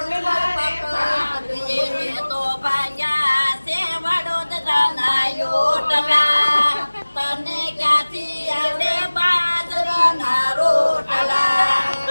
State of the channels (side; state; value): both; inverted; correlation -1.00